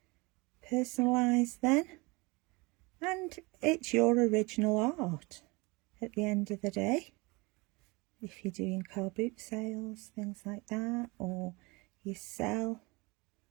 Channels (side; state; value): left; quieter; 25.5 dB